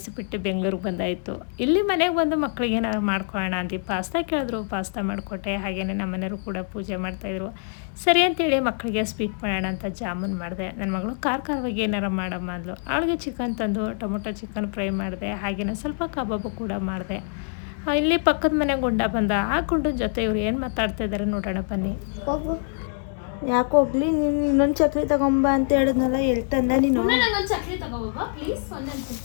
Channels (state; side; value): silent; right; 61 dB below the other